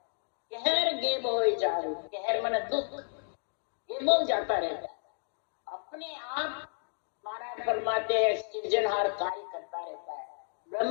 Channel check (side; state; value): right; silent; digital silence